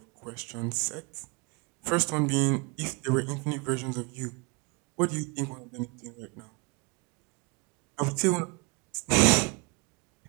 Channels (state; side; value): quieter; left; 29.9 dB